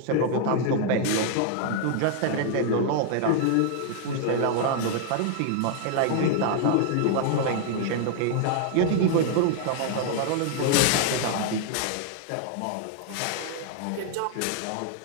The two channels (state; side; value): different; both; correlation 0.00